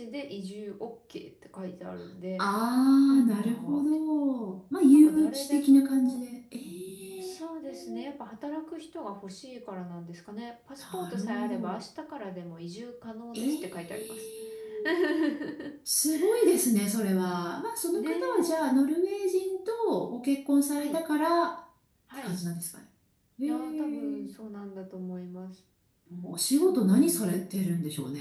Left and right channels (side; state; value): both; identical; correlation 1.00